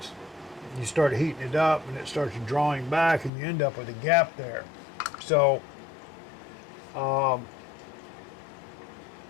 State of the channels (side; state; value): right; drops out; at 3.3 s